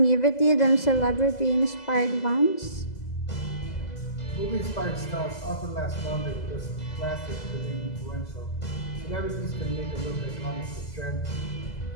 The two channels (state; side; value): late; right; 2.0 ms